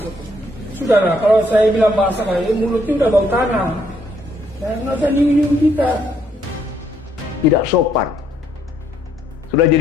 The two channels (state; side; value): normal; both; correlation 0.70